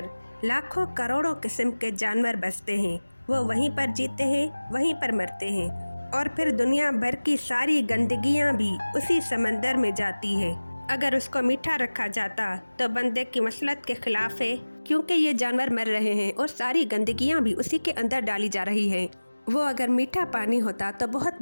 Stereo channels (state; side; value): inverted; both; correlation -1.00